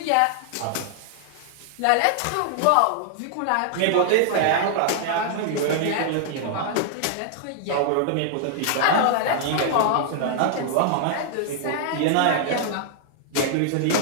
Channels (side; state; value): both; different; correlation -0.01